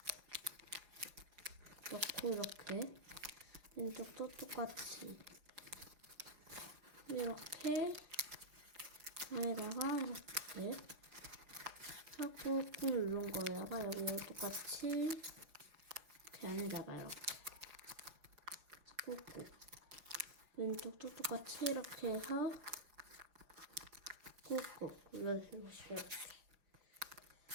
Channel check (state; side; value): late; left; 5.2 ms